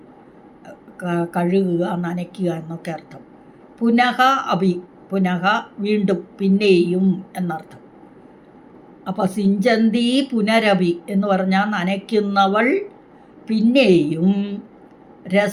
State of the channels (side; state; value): both; identical; correlation 1.00